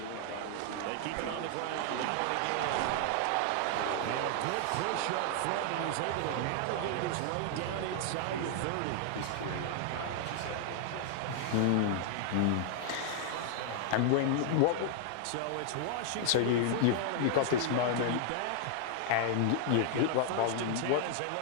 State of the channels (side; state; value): both; different; correlation 0.00